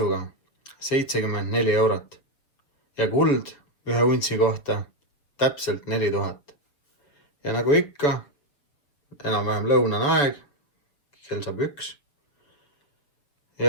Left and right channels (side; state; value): right; late; 6.6 ms